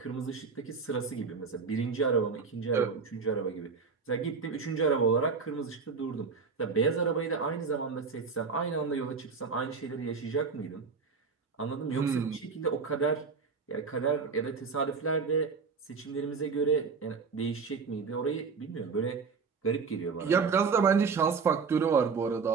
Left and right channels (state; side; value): quieter; left; 5.2 dB